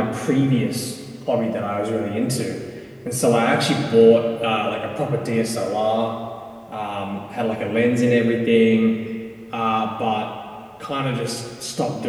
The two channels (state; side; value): identical; both; correlation 1.00